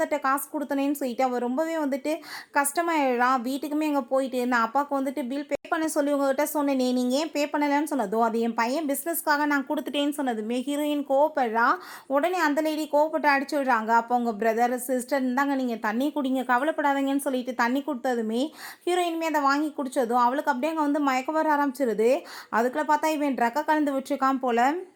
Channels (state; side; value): identical; both; correlation 1.00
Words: காசு கொடுத்தனேன்னு சொல்லிட்டு அவள் ரொம்பவே வந்துட்டு கஷ்டமாயிடுறான். வீட்டுக்குமே அங்கே போயிட்டு நான் அப்பாவுக்கு வந்துட்டு பில் பே பண்ண சொல்லி உங்ககிட்ட சொன்னேனே, நீங்கள் ஏன் பே பண்ணலைன்னு சொன்னதும் அது என் பையன் பிஸ்னஸ்க்காக நான் கொடுத்துட்டேன்னு சொன்னதுமே ஹீரோயின் கோவப்படுறா. உடனே அந்த லேடி கோவப்பட்டு அடிச்சு விடுறாங்க. அப்போ உங்கள் பிரதர் சிஸ்டர் இருந்தாங்க, நீங்கள் தண்ணி குடிங்க கவலைப்படாதீங்கன்னு சொல்லிட்டு தண்ணி கொடுத்ததுமே ஹீரோயினுமே அதை வாங்கி குடித்ததும் அவளுக்கு அப்படியே அங்கே வந்து மயக்க வர ஆரம்பிச்சிருது. அதுக்குள்ளே பார்த்தா இவன் ட்ரக்கை கலந்து விட்டுருக்கான் போல்.